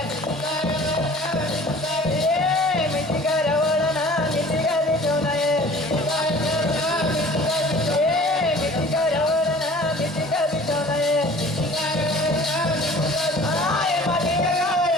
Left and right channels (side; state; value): both; normal; correlation 0.47